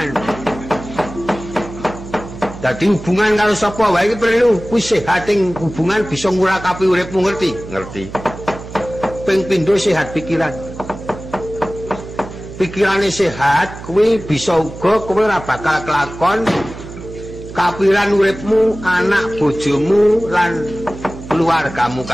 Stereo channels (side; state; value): right; noise; hum, 13 dB below the sound